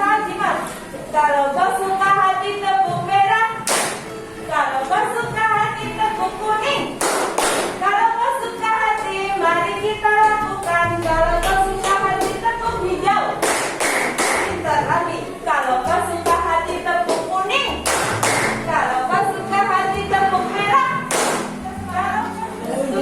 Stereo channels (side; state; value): both; identical; correlation 1.00